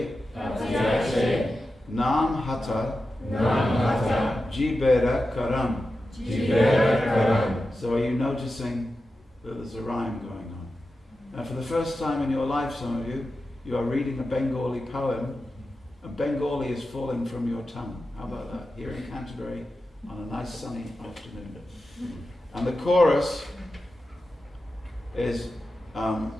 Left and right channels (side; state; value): both; normal; correlation 0.91